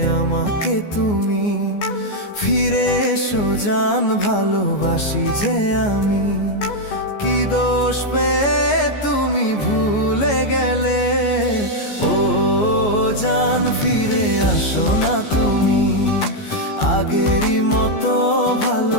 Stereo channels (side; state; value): right; late; 14 ms